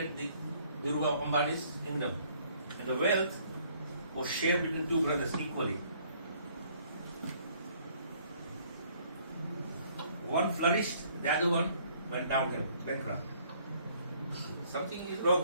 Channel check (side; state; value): both; inverted; correlation -0.62